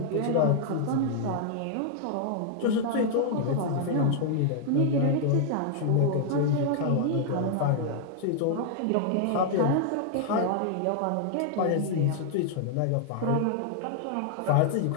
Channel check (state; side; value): different; both; correlation -0.01